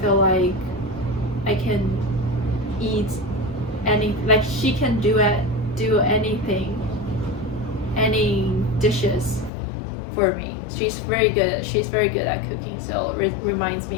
feel like I can eat like she can do anything, any dishes for me. She's very good at cooking, so it reminds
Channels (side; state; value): right; drops out; at 9.5 s